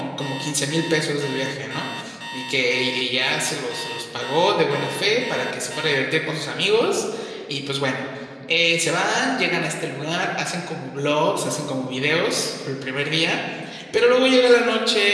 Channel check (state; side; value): identical; both; correlation 1.00